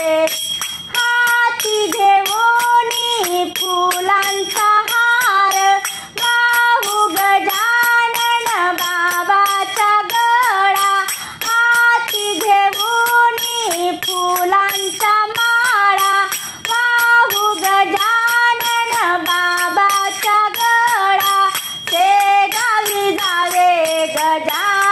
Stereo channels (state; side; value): identical; both; correlation 1.00